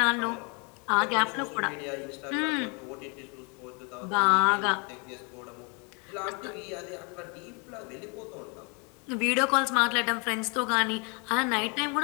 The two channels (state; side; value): quieter; right; 33.2 dB